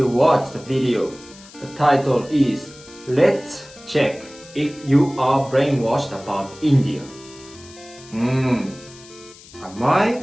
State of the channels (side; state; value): left; noise; hiss, 21 dB below the sound